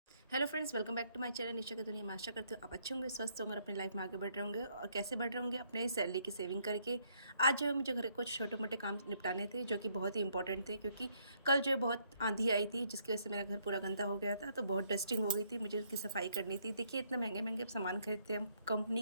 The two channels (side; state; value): both; inverted; correlation -0.71